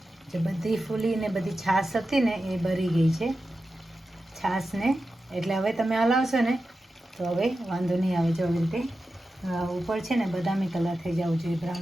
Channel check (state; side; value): normal; both; correlation 0.91